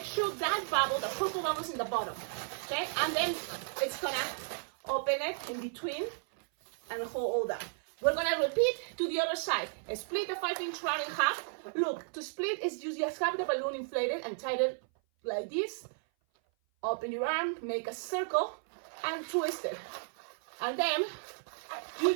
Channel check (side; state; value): left; silent; 55 dB below the other